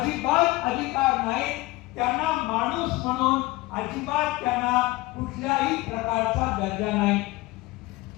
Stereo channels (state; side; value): quieter; right; 20.3 dB